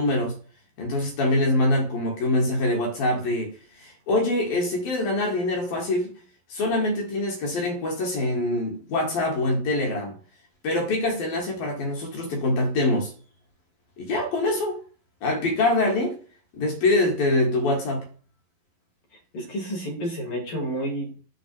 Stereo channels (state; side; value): late; right; 11 ms